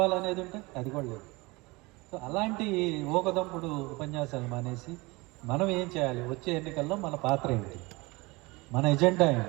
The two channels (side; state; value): left; quieter; 23.9 dB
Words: ఉంటే అది కూడా లేదు. సో అలాంటి ఊకదంపుడు ఉపన్యాసాలు మానేసి మనం ఏం చేయాలి, వచ్చే ఎన్నికల్లో మన పాత్ర ఏంటి, మన ఎజెండా